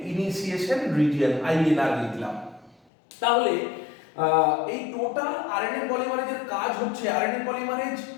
ইনিশিয়েশন রিজিয়ন, আইএনআর লিখলাম। তাহলে এই টোটাল আরএনএ পলিমারেজের কাজ হচ্ছে, আরএনএ পলিমারেজ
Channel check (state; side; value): drops out; right; at 2.8 s